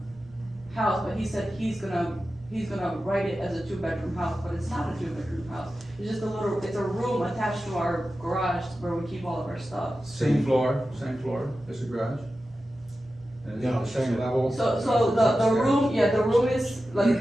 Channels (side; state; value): both; normal; correlation 0.93